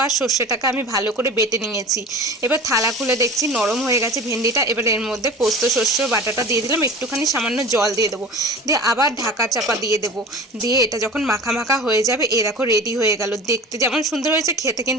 আর সর্ষেটাকে আমি ভালো করে বেটে নিয়েছি। এবার থালা খুলে দেখছি নরম হয়ে গেছে ভেন্ডিটা। এবার এর মধ্যে পোস্ত সর্ষে বাটাটা দিয়ে দিলাম, একটুখানি সামান্য জল দিয়ে দেবো, দিয়ে আবার ঢাকা চাপা দিয়ে দেবো। দিয়ে এটা যখন মাখা মাখা হয়ে যাবে, এ দেখো রেডি হয়ে গেল। দেখতে যেমন সুন্দর হয়েছে, খেতে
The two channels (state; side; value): normal; both; correlation 0.37